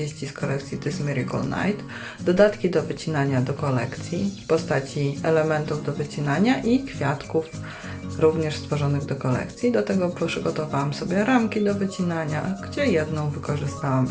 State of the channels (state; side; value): identical; both; correlation 1.00